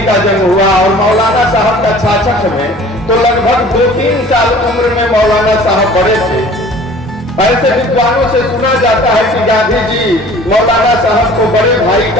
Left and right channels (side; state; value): both; normal; correlation 0.48